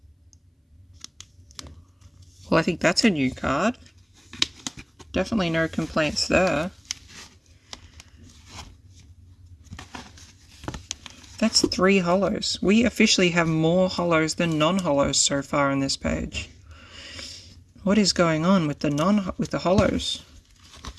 Well, I think that's a new card. Definitely no complaints there. That's 3 holos. We officially have more holos than non-holos so far on this page. What is going on with the holos?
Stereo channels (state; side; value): identical; both; correlation 1.00